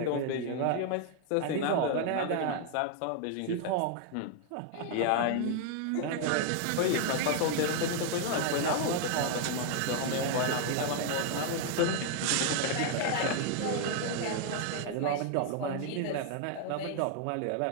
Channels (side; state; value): both; different; correlation 0.00